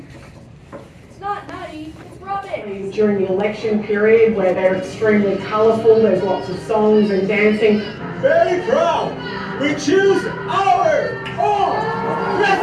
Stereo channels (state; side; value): identical; both; correlation 1.00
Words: It's not nutty, it's rubbish. During the election period where they're extremely colourful, there's lots of songs and dancing. Very proud. We choose our own